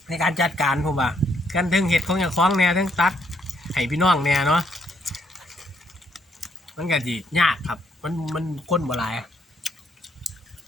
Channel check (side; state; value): both; normal; correlation 0.71